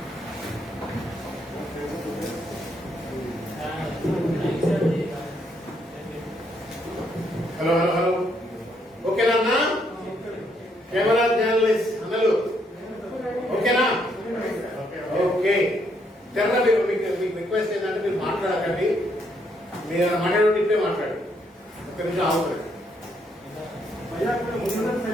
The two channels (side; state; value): both; normal; correlation 0.73